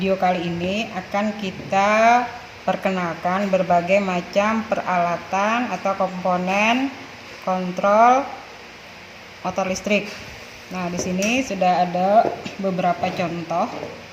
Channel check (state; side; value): identical; both; correlation 1.00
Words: kali ini akan kita perkenalkan berbagai macam peralatan atau komponen kontrol motor listrik. Nah, di sini sudah ada beberapa contoh